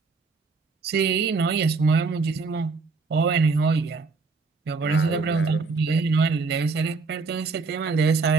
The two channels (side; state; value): left; quieter; 4.4 dB